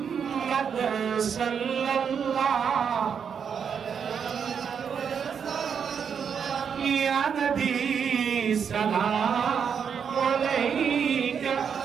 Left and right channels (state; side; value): quieter; left; 7.1 dB